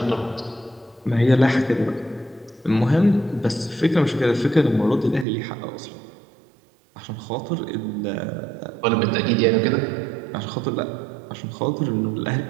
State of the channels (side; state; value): left; drops out; at 5.2 s